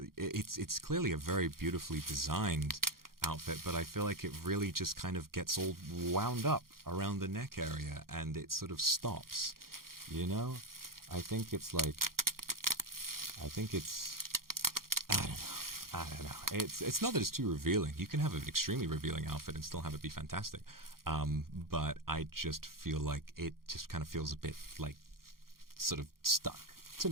clearly a very beautifully designed outfit, but I feel like it really just kind of gets all wound up around the neck area and it sort of stops. I think it's I don't know. It's not that it's too revealing. You can have an extremely revealing outfit and still have it be fantastic. But I just feel like it just kind of feels a bit like sort of stuck to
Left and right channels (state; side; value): late; left; 0.92 ms